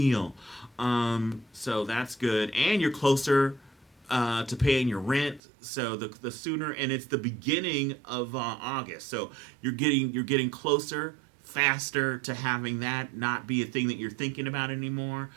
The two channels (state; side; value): drops out; left; at 5.4 s